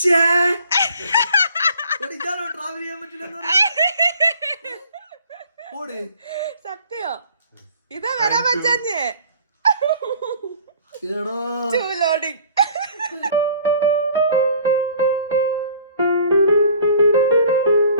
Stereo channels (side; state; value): both; inverted; correlation -0.53